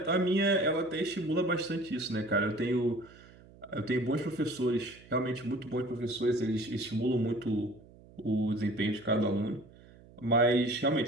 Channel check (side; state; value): right; noise; hum, 23 dB below the sound